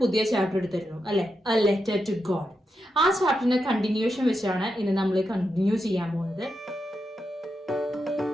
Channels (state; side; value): normal; both; correlation 0.86